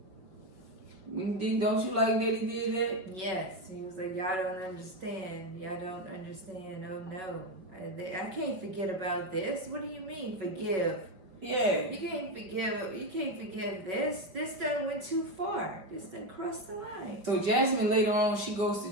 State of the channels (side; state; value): left; late; 5.4 ms